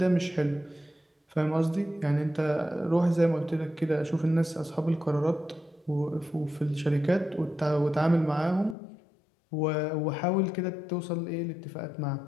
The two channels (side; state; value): right; drops out; at 8.8 s